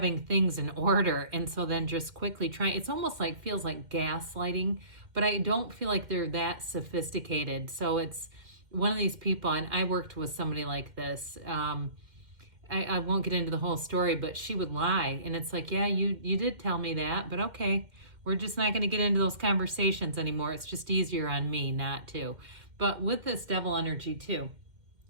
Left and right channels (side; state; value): left; late; 2.1 ms